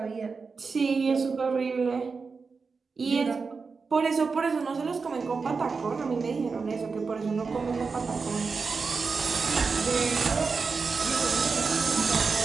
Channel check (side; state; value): left; quieter; 4.8 dB